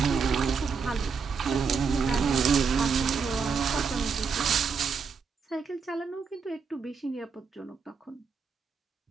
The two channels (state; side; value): quieter; left; 5.5 dB